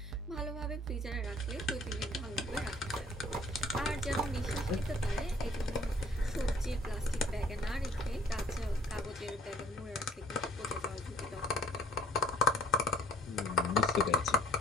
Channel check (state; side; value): normal; both; correlation 0.56